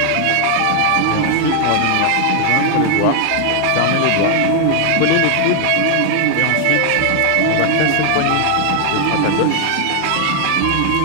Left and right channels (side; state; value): both; different; correlation 0.00